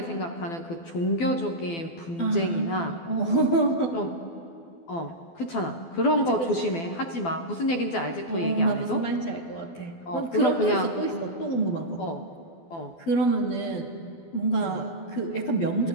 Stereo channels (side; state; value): right; late; 12 ms